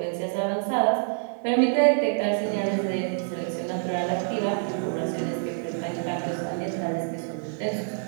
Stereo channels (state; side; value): silent; left; 60 dB below the other